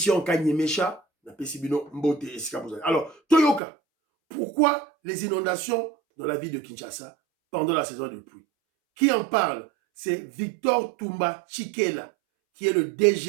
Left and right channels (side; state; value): left; drops out; at 3.6 s